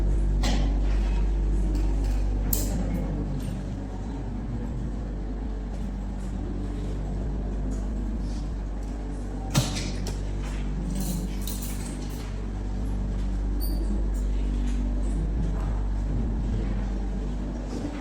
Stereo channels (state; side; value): identical; both; correlation 1.00